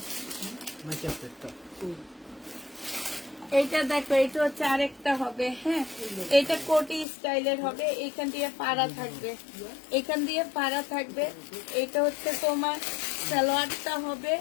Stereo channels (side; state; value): right; drops out; at 7.1 s